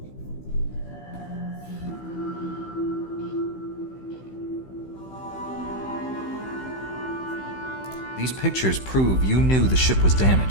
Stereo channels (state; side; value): late; right; 16 ms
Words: These pictures prove you knew the ship was